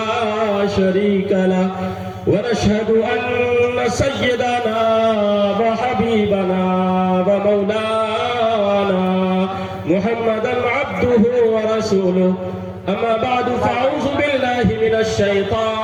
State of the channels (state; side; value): identical; both; correlation 1.00